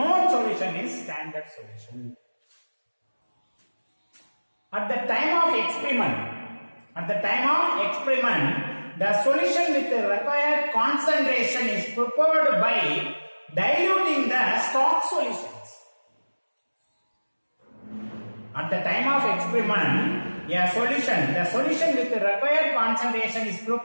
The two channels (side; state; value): both; inverted; correlation -1.00